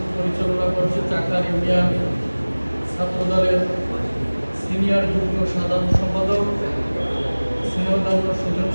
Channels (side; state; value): both; inverted; correlation -1.00